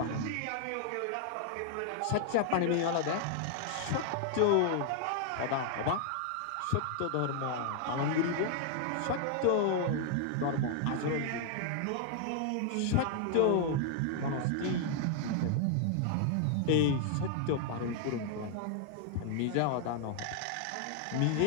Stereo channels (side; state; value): both; different; correlation 0.00